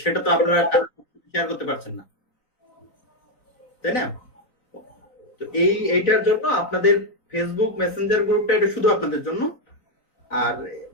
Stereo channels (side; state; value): right; late; 3.9 ms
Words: সেটা তো আপনারা শেয়ার করতে পারছেন না, তাই না? তো এইটার জন্য আপনাদের ফেসবুক মেসেঞ্জার গ্রুপটা এটা শুধু আপনাদের জন্য, আর